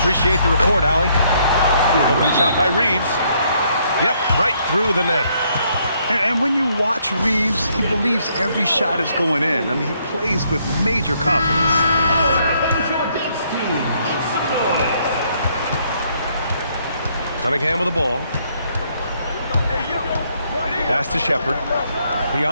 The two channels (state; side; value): inverted; both; correlation -0.70